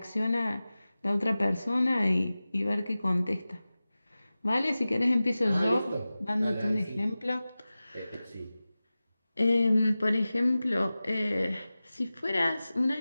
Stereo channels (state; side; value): inverted; both; correlation -0.96